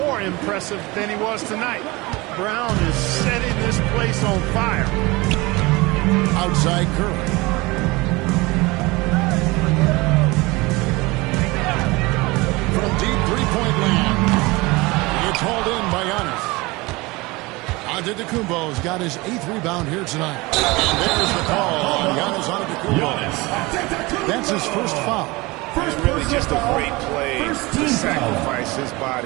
impressive than he was tonight. Brown is setting this place on fire. Outside Curry. Antetokounmpo's got his 8th rebound here tonight. And there's the call on Giannis Antetokounmpo. That's his first foul. And really just a great play to sacrifice his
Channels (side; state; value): left; quieter; 23.1 dB